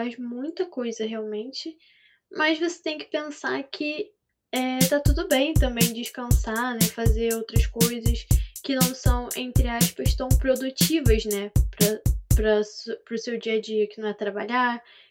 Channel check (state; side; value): identical; both; correlation 1.00